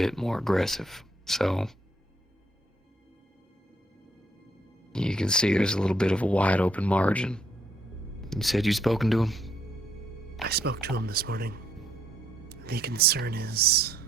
more aggressive. So you can see there's a little bit of a wide open margin. You said you'd spoken to him? I spoke to him this morning. The concern is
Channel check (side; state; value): both; normal; correlation 0.70